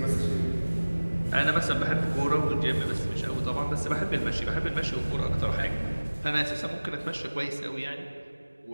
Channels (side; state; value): both; inverted; correlation -1.00